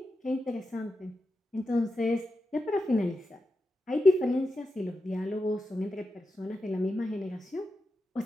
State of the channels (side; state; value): both; normal; correlation 0.89